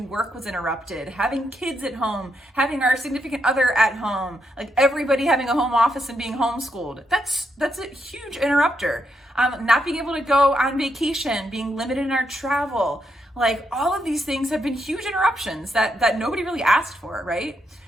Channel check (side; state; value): both; normal; correlation 0.80